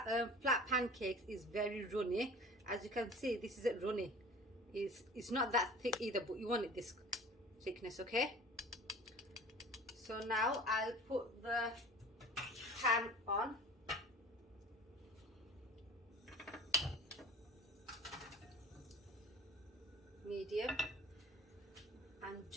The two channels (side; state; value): both; normal; correlation 0.42